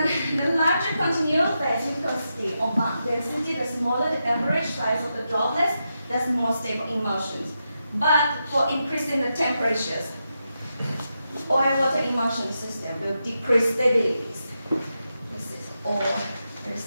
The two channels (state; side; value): inverted; both; correlation -0.87